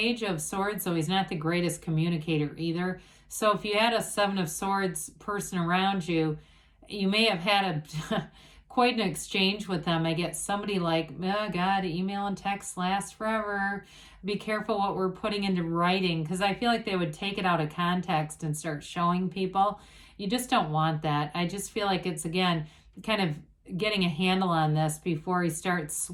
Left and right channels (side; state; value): both; identical; correlation 1.00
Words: of Swords, so he's not the greatest communicator either. So if you had a 7 of Swords person around you, you may have had quite an exchange with them. I get somebody like, oh God, email and text last forever. Be careful what we're putting into writing, because I feel like they would take it out of context and start showing people. You just don't want that. I just feel like it's, again, kind of getting a handle on this before he starts